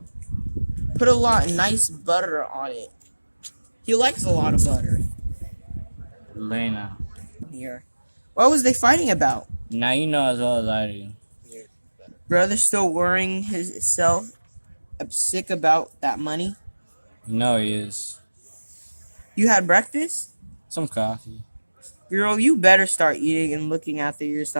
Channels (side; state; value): both; inverted; correlation -1.00